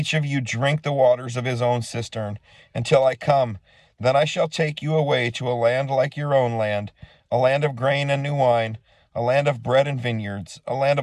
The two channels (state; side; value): identical; both; correlation 1.00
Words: of you drink the waters of his own cistern, until I come. Then I shall take you away to a land like your own land, a land of grain and new wine, a land of bread and vineyards, a land